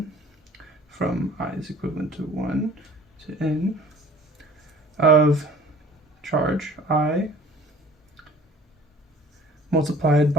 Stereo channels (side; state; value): both; normal; correlation 0.48